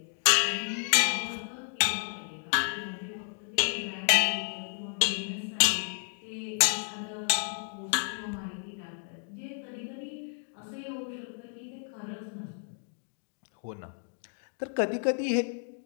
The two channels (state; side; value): silent; right; 57 dB below the other